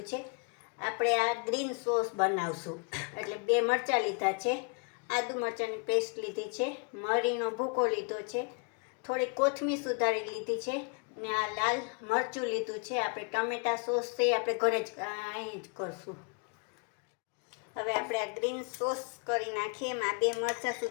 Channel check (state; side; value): quieter; right; 37.1 dB